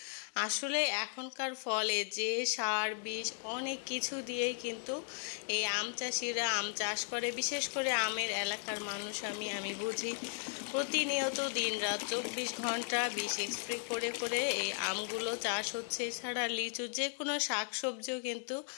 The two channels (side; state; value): right; silent; 54 dB below the other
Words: আসলে এখনকার ফলে যে সার বিষ অনেক কিছু দিয়েই কিন্তু এই আম চাষিরা আম চাষ করে। বিশেষ করে আমের এলাকার মানুষ আমি বুঝি প্রতিনিয়ত দিনরাত 24 ঘন্টা বিষ স্প্রে করে করে এই আমগুলো চাষ হচ্ছে। এছাড়া লিচু, যে কোনো শাকসবজিও কিন্তু